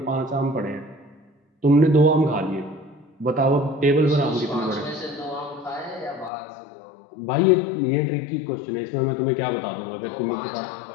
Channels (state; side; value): drops out; right; at 6.3 s